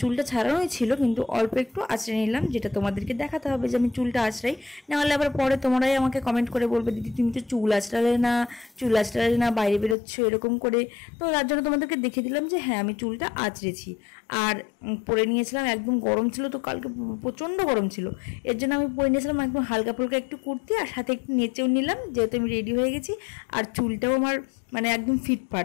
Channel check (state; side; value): drops out; right; at 10.0 s